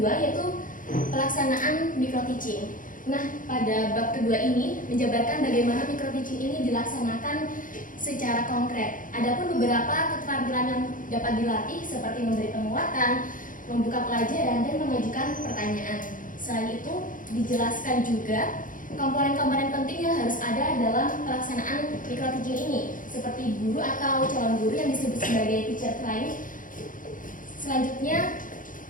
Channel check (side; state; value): right; late; 0.39 ms